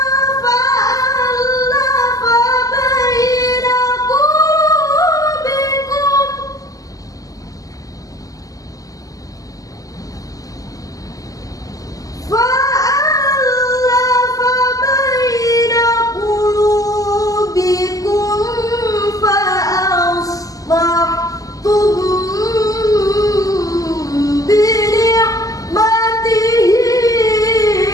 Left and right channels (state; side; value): late; right; 0.17 ms